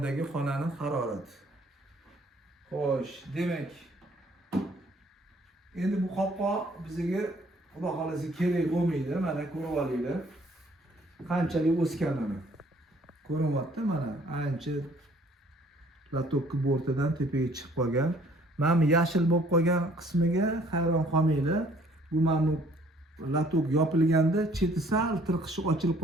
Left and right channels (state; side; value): normal; both; correlation 0.59